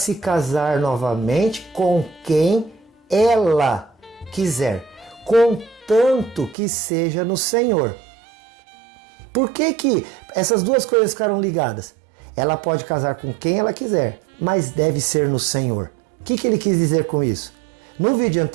casar novamente com quem ela quiser, contanto que seja no Senhor. Por que essas duas coisas ficaram ligadas? Ela pode casar com quem ela quiser, mas deve ser no Senhor. O que ele quis dizer com isso? No vídeo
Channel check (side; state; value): left; drops out; at 6.6 s